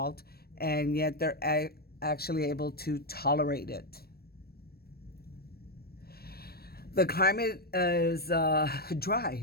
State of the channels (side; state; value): right; late; 0.45 ms